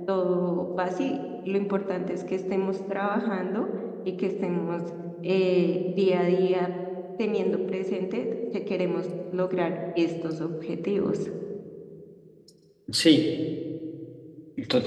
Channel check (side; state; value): both; identical; correlation 1.00